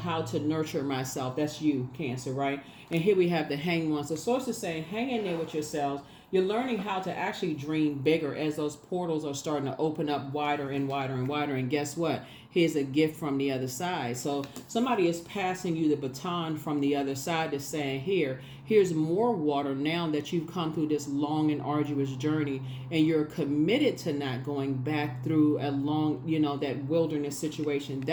to nurture myself. That's you, Cancer, right? And here we have the Hanged One. So Source is saying, hang in there with yourselves. You're learning how to actually dream bigger as those portals are starting to open up wider and wider and wider. And guess what? Here's a gift from the other side. So somebody is passing you the baton from the other side to saying, here's more water now that you've come through this long and arduous journey, and you're committed to not going back through a long, that wilderness situation.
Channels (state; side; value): identical; both; correlation 1.00